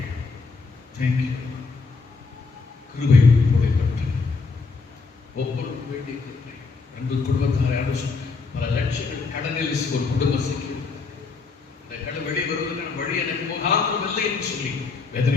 தேங்க்யூ. கிருபை உங்களை பெற்று ஒவ்வொருவரும் வேண்டிய கிருபை. அன்பு குடும்பத்தாரை பல லட்சங்கள் கடனில் ஒரு குடும்ப சிக்கி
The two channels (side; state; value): right; quieter; 4.4 dB